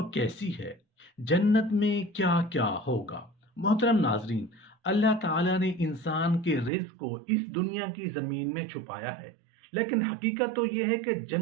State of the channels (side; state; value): left; drops out; at 6.7 s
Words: کیسی ہے؟ جنت میں کیا کیا ہوگا؟ محترم ناظرین، اللہ تعالیٰ نے انسان کے رزق کو اس دنیا کی زمین میں چھپایا ہے، لیکن حقیقت تو یہ ہے کہ